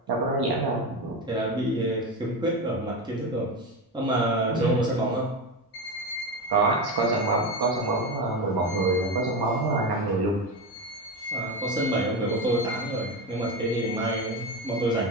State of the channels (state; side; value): normal; both; correlation 0.18